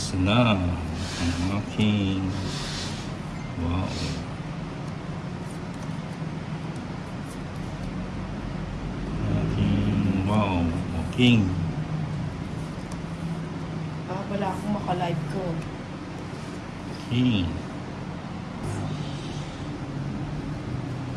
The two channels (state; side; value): identical; both; correlation 1.00